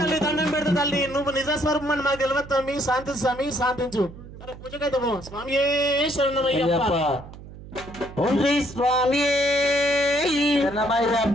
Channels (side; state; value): right; noise; hum, 16 dB below the sound